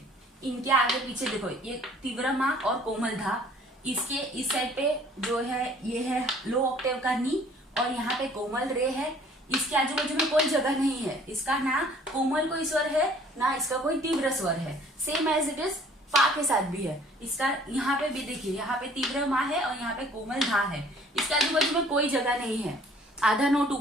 इनके आगे पीछे देखो, ये तीव्र माँ और कोमल धा, इसके इस साइड पे जो है ये है लो ऑक्टेव का नी, और यहाँ पे कोमल रे है। इसके आजू बाजू में कोई जगह नहीं है, इसका ना कोमल कोई स्वर है ना इसका कोई तीव्र स्वर है। सेम एज इट इज पा के साथ भी है। इसका यहाँ पे भी देखिए, यहाँ पे तीव्र माँ है और यहाँ पे कोमल धा है। इसके आजू बाजू में कोई जगह नहीं है, आधा नोट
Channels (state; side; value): normal; both; correlation 0.55